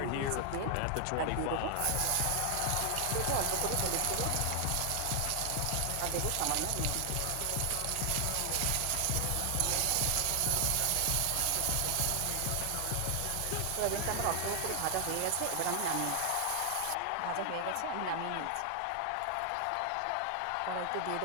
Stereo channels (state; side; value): different; both; correlation 0.00